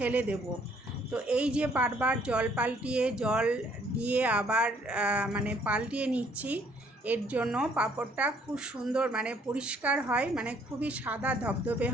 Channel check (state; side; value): normal; both; correlation 0.64